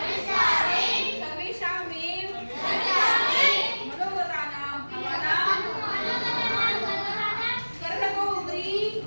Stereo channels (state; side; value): inverted; both; correlation -1.00